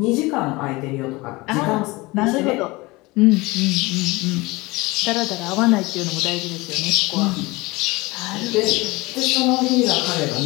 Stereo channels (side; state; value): right; quieter; 22.6 dB